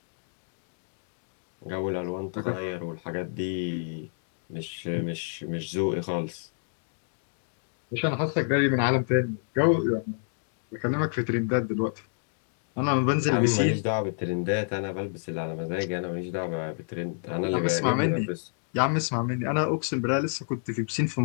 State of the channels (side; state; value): right; silent; digital silence